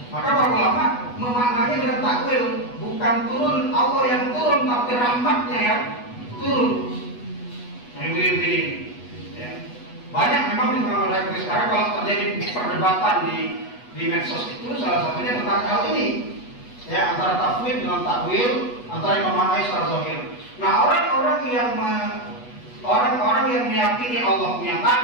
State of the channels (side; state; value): right; late; 8.2 ms